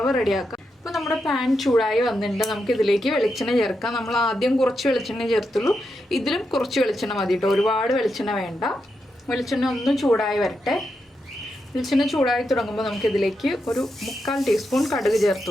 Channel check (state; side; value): normal; both; correlation 0.85